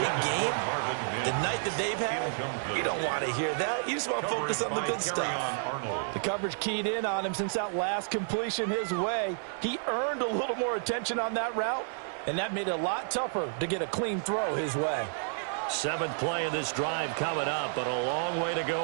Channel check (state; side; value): silent; left; 57 dB below the other